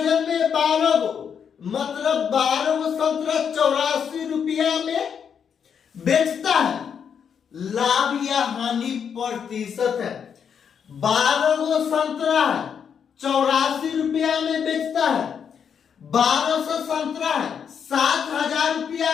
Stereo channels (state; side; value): quieter; right; 7.4 dB